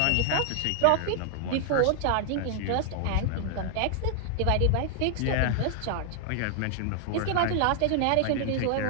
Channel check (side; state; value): both; different; correlation 0.00